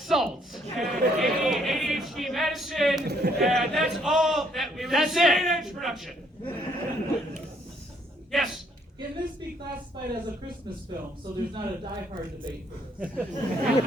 and ADHD medicine, and that's all. It was That's straight it. edge production. Yes. Can this be classified as a Christmas film, so there's not a die-hard debate for this?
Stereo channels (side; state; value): both; normal; correlation 0.67